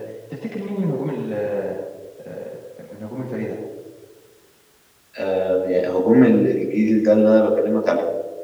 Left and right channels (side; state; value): both; identical; correlation 1.00